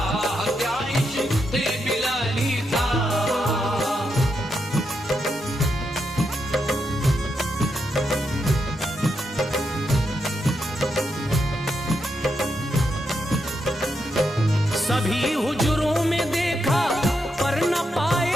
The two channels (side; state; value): both; normal; correlation 0.83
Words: क्या इश्क़े बिलाली था। सभी हुजरों में देखा पर न